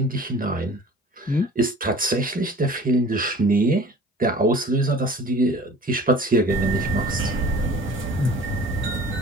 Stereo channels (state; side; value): normal; both; correlation 0.45